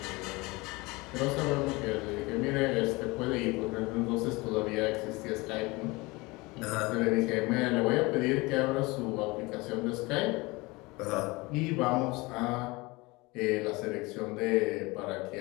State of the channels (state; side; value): quieter; right; 23.8 dB